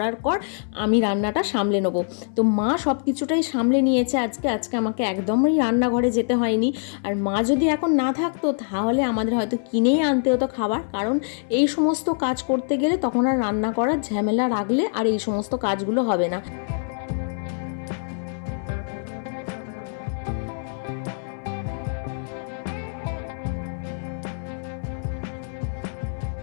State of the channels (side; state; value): right; silent; 58 dB below the other